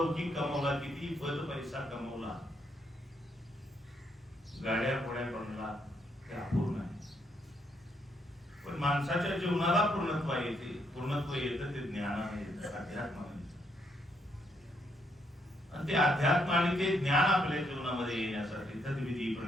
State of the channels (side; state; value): both; normal; correlation 0.75